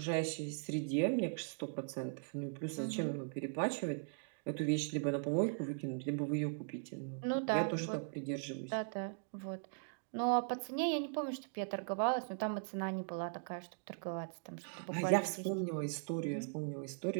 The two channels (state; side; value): silent; left; digital silence